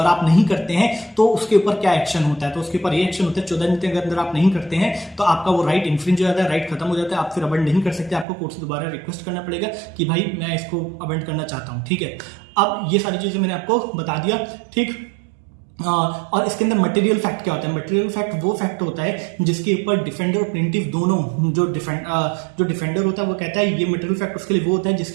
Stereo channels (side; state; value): left; drops out; at 8.2 s